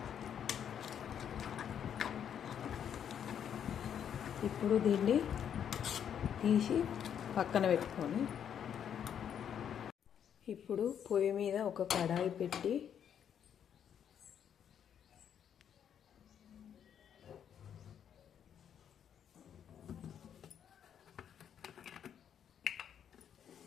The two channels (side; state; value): right; quieter; 8.8 dB